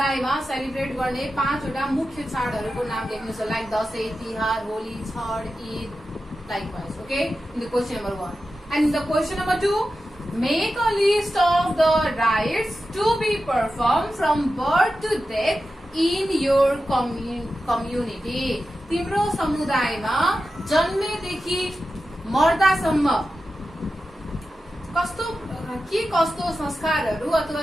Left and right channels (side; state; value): both; normal; correlation 0.92